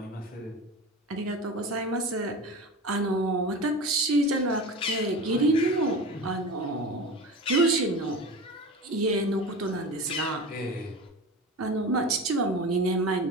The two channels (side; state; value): both; normal; correlation 0.30